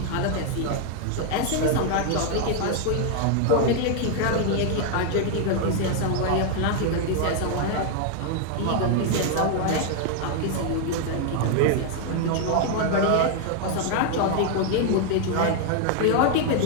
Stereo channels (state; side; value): different; both; correlation 0.00